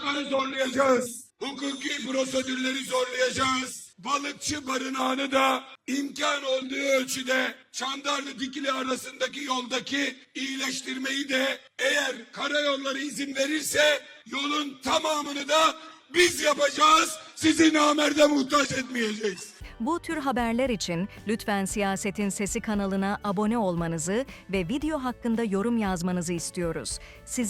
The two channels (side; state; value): both; identical; correlation 1.00